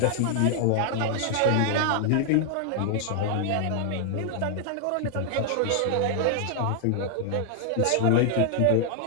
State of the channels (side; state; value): both; different; correlation 0.00